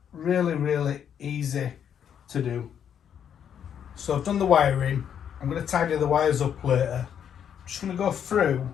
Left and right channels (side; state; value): right; quieter; 8.6 dB